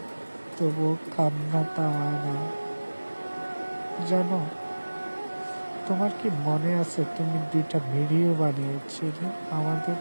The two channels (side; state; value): both; inverted; correlation -1.00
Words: তবু কান্না থামায় না। জানো, তোমার কি মনে আছে তুমি 2টা ভিডিও বানিয়েছিলে আমাদের